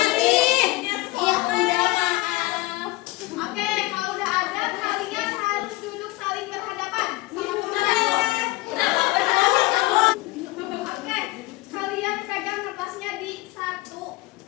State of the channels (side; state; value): right; quieter; 20.3 dB